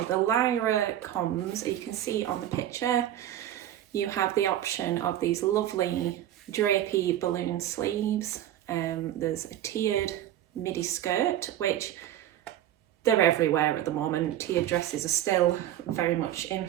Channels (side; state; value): left; quieter; 12.1 dB